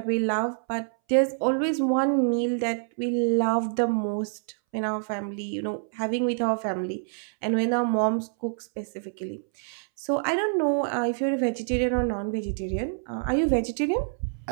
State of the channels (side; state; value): left; silent; 60 dB below the other